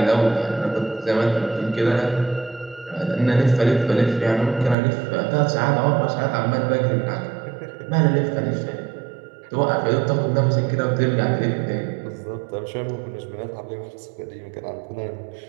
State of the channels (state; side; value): drops out; left; at 4.8 s